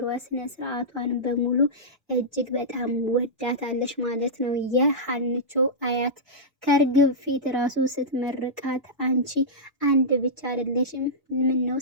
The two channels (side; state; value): both; normal; correlation -0.13